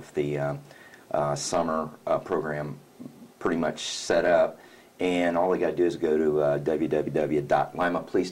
the summer program pretty much set up, and all they got to do is go to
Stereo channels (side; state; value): both; identical; correlation 1.00